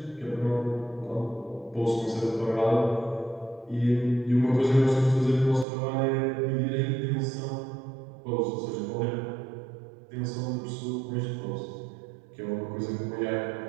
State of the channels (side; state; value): left; drops out; at 5.7 s